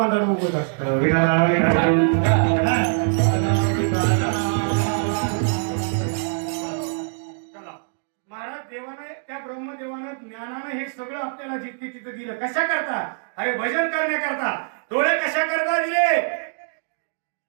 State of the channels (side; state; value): left; silent; digital silence